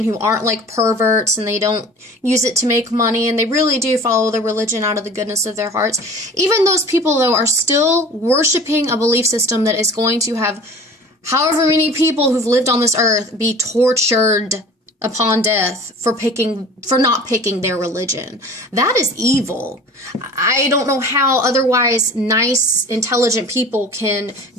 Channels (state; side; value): normal; both; correlation 0.42